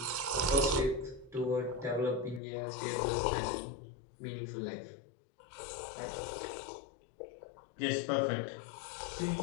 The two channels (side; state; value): right; drops out; at 2.4 s